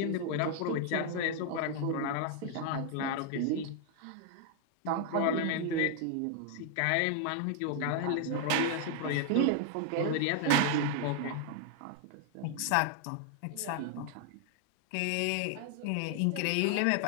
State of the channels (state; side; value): different; both; correlation 0.00